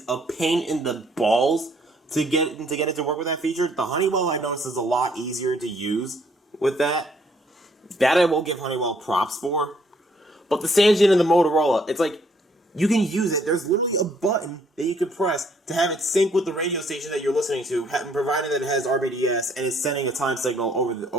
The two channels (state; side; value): normal; both; correlation 0.65